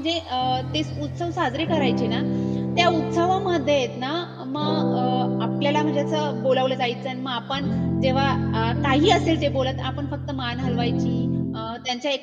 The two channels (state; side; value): identical; both; correlation 1.00